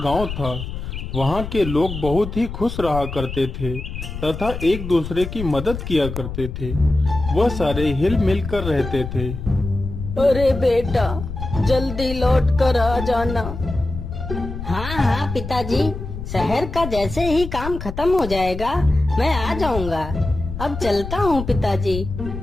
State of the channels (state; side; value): noise; left; rumble, 7 dB below the sound